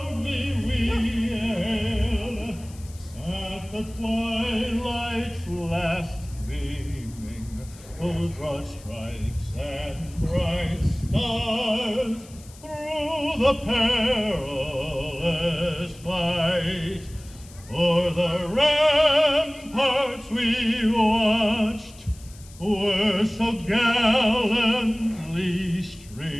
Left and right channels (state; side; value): noise; left; hiss, 22 dB below the sound